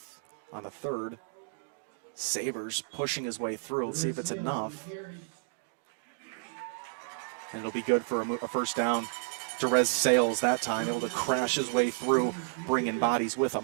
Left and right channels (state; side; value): silent; left; digital silence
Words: on the third. Savers pushing his way through. Let's see if it's enough. And it'll be good for a first down. Derez Sales that time, able to crash his way through, bringing bodies with